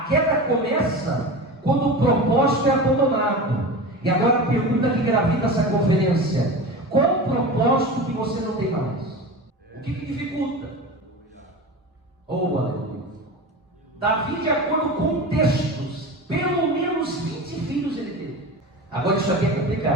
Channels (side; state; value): both; normal; correlation 0.29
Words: queda começa quando o propósito é abandonado. E agora a pergunta que gravita essa conferência: qual o propósito que você não tem mais? O que dificulta? Oh, aleluia. Davi, de acordo com textos, pelo menos 20 filhos ele teve. Agora isso aqui é